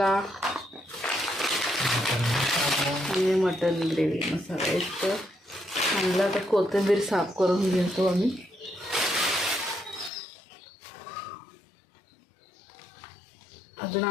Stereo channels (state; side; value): drops out; right; at 10.1 s